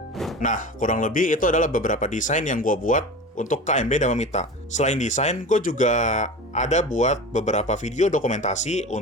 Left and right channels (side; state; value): both; normal; correlation 0.32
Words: Nah, kurang lebih itu adalah beberapa desain yang gue buat untuk KM Beda Memita. Selain desain, gue juga ada buat beberapa video dokumentasi